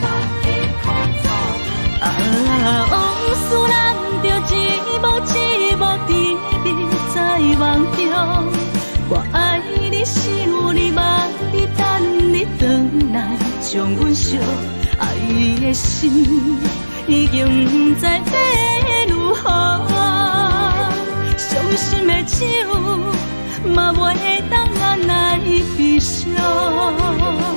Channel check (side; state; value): both; inverted; correlation -1.00